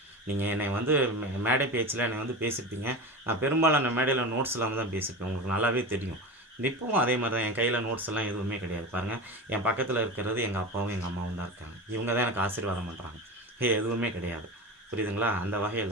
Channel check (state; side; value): normal; both; correlation 0.28